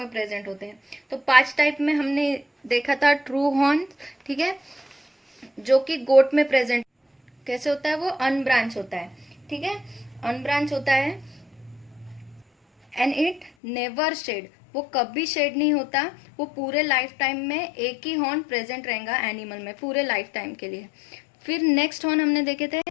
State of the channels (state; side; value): drops out; right; at 13.5 s